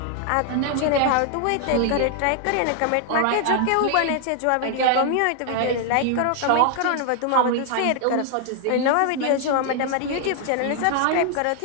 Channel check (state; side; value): different; both; correlation 0.00